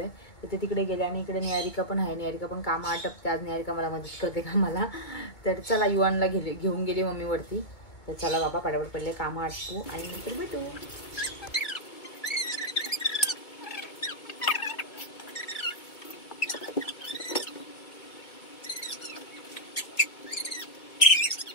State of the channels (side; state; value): right; late; 2.2 ms